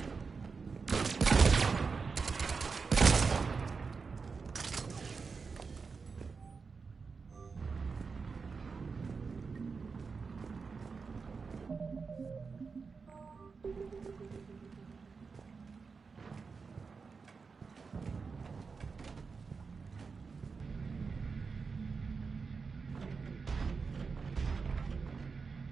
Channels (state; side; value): quieter; left; 5.0 dB